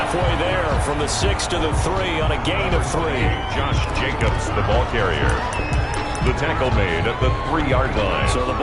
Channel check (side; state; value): both; identical; correlation 1.00